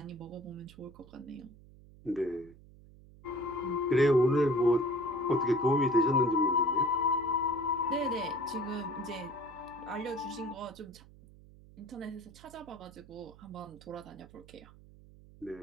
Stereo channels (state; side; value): noise; right; hum, 22 dB below the sound